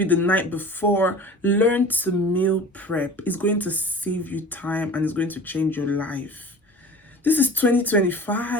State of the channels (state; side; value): normal; both; correlation 0.40